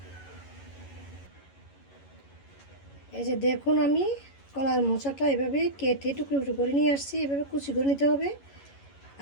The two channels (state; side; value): late; right; 11 ms